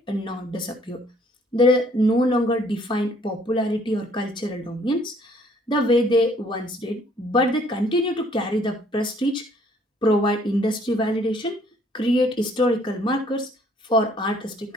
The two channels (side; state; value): both; normal; correlation 0.62